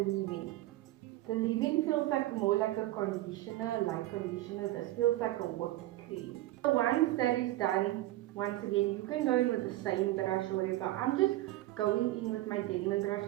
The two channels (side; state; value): left; quieter; 16.3 dB